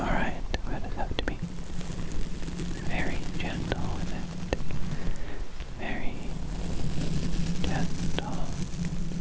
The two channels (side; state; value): both; identical; correlation 1.00